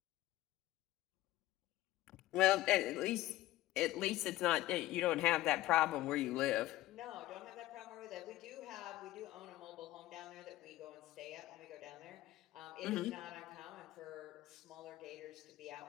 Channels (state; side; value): quieter; right; 16.3 dB